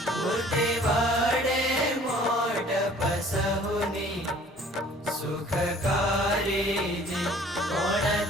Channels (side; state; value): both; normal; correlation 0.53